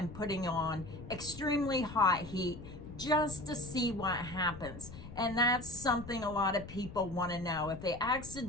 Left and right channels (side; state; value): left; noise; rumble, 13 dB below the sound